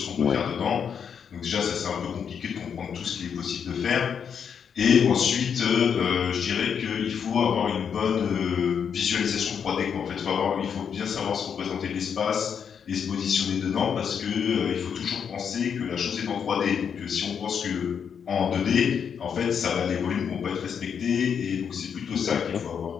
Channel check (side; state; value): right; quieter; 7.3 dB